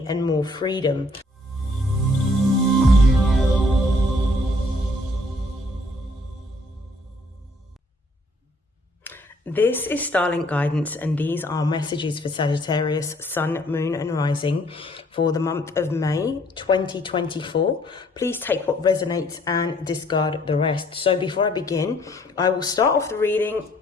and more freedom. This is StarLink guidance, and these are messages for Sagittarius, Sun, Moon and Rising for the month of May 2024. Please take what resonates and discard the rest. So before I begin, I will start off the reading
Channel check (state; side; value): normal; both; correlation 0.63